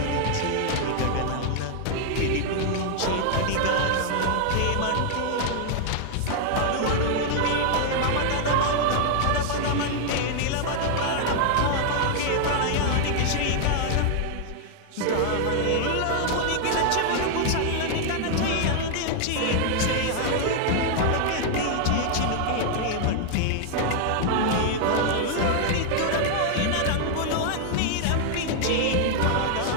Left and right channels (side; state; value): both; different; correlation 0.00